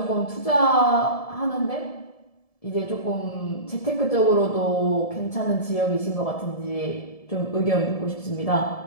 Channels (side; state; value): right; late; 1.7 ms